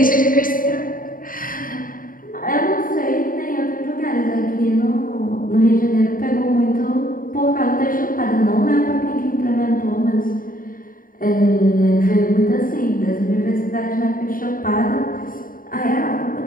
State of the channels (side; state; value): right; late; 0.41 ms